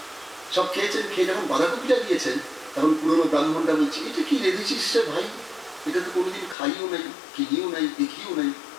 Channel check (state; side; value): drops out; right; at 6.6 s